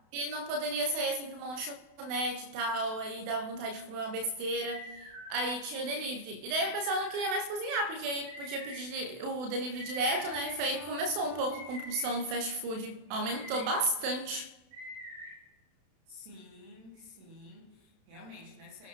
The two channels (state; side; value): late; left; 32 ms